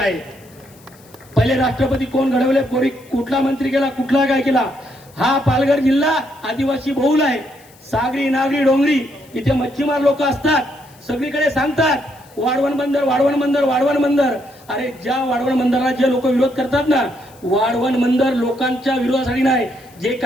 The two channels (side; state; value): left; noise; hiss, 27 dB below the sound